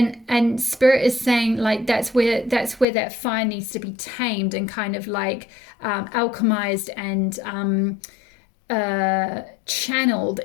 spirit is saying like that's where that fire needs to be tamed and kind of like alchemized and channeled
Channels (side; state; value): right; drops out; at 2.9 s